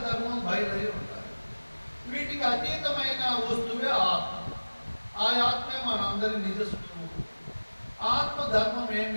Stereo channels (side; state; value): both; inverted; correlation -1.00